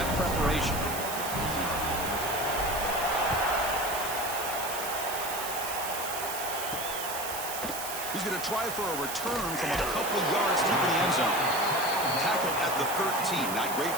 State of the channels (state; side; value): noise; right; hiss, 6 dB below the sound